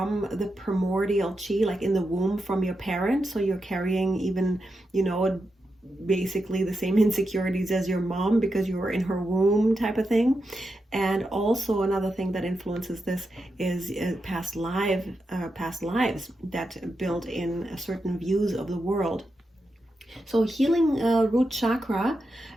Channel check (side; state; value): both; normal; correlation 0.87